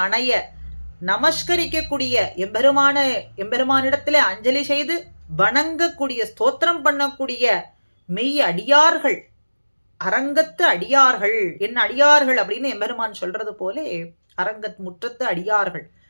அணைய, நமஸ்கரிக்கக்கூடிய எம்பெருமானிடத்திலே அஞ்சலி செய்து வணங்கக்கூடிய, ஸ்தோத்திரம் பண்ணக்கூடிய மெய் அடியார்கள், அரங்கத்து அடியார்கள், என்ன அடியார்கள் அப்படின்னு எம்பெருமான் சொல்றது போலே அரங்கத் முற்றத்து அடியார்கள்,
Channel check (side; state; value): both; inverted; correlation -1.00